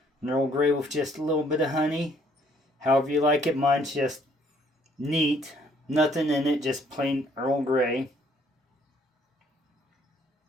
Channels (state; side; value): normal; both; correlation 0.64